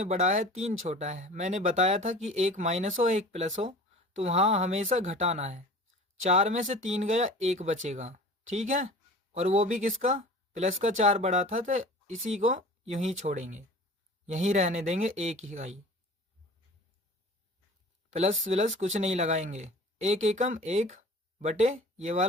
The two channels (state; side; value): normal; both; correlation 0.41